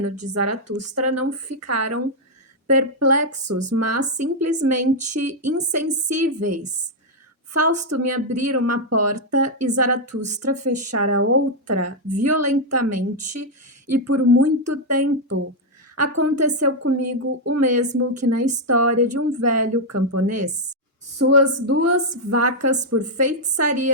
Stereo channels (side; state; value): both; normal; correlation -0.01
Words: de Zaratustra, não ficaram perplexos, mas simplesmente insensíveis. Fausto me abrira uma porta e Zaratustra fechara outra violentamente e por muito tempo. Aconteceu comigo o mesmo que na história de um velho camponês. Suas duas vacas, por